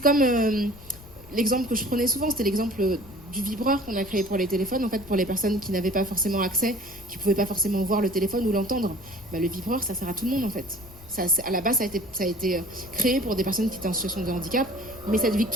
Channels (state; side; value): noise; left; rumble, 20 dB below the sound